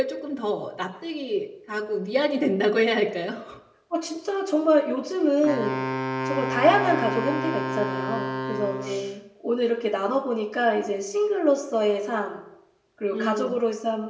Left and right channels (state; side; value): identical; both; correlation 1.00